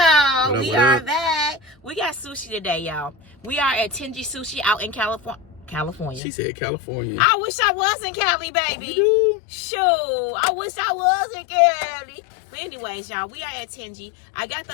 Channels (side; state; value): right; drops out; at 6.2 s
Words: What up, we what are up? back. We got sushi today, y'all. We are at Tenji Sushi out in California. She said California. I wish I was in Cali, baby. You do? Shoot, I wish I was in Cali. But anyways, y'all, we are at Tenji. I got the